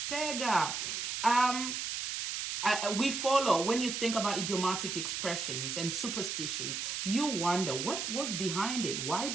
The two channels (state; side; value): noise; right; hiss, 3 dB below the sound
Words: tega. We follow, when you think about idiomatic expressions and superstitions, you wonder what was behind it. Why